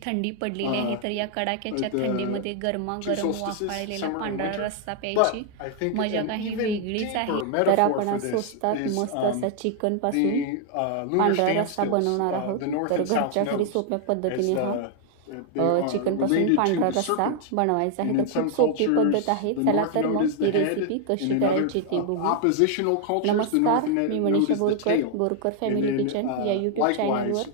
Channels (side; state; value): both; different; correlation 0.00